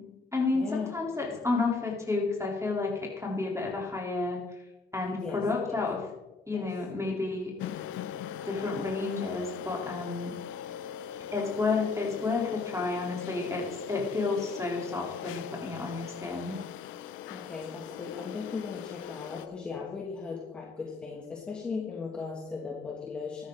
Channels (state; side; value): quieter; right; 3.8 dB